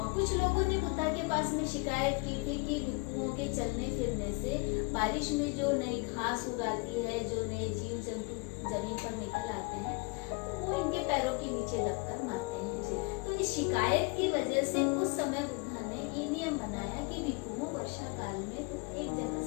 कुछ लोगों ने बुद्धा के पास में शिकायत की थी कि भिक्षुओं के चलने फिरने से बारिश में जो नई घास उगाती है, जो नए जीव जंतु जमीन पर निकल आते हैं, तो वो इनके पैरों के नीचे दबकर मरते हैं। तो इस शिकायत की वजह से उस समय बुद्धा ने ये नियम बनाया कि भिक्षुओं वर्षा काल में एक जगह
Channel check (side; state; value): right; quieter; 29.3 dB